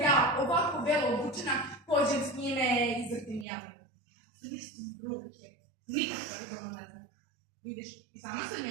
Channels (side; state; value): left; drops out; at 3.5 s